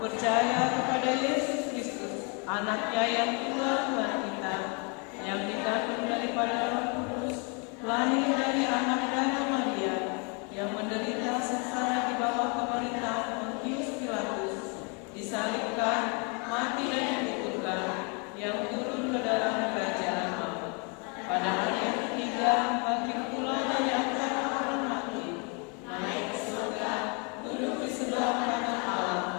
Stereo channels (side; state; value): right; quieter; 34.3 dB